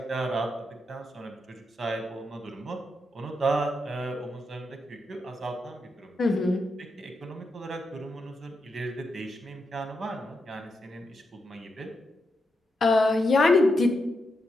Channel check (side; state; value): both; normal; correlation 0.84